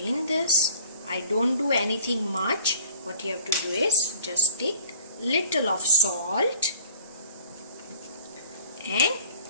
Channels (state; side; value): inverted; both; correlation -0.50